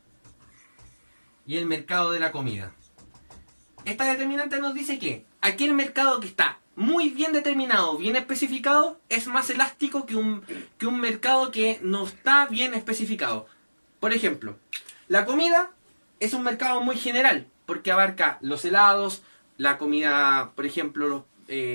y el mercado de la comida. Esta determinante nos dice que aquel mercado que está muy bien determinado, bien especificado, es más elástico que un mercado que no está bien especificado. Por ejemplo, la comida es un mercado muy general, porque abarca los helados, la comida, por ejemplo,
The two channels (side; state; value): both; inverted; correlation -1.00